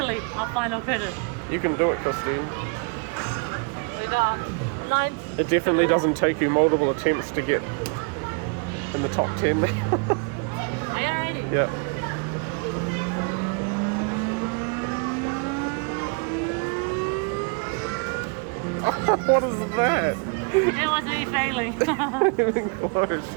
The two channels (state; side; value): quieter; left; 34.9 dB